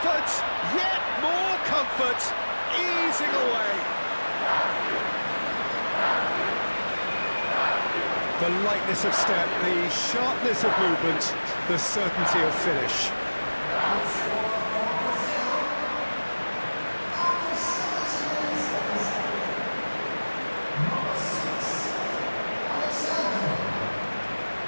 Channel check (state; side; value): inverted; both; correlation -1.00